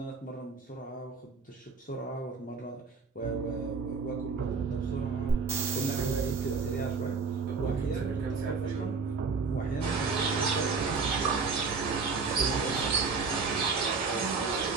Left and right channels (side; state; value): left; quieter; 4.8 dB